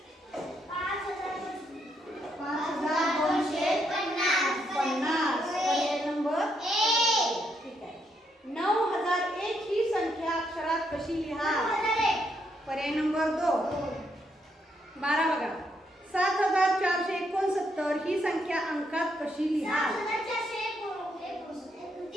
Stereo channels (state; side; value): normal; both; correlation 0.76